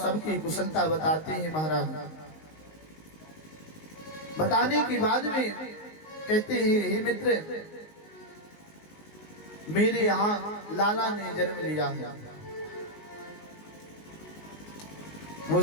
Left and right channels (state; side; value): late; right; 19 ms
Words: कुशलता बताते हैं। महाराज बताने के बाद में कहते हैं हे मित्र मेरे यहाँ लाला ने जन्म लिया है।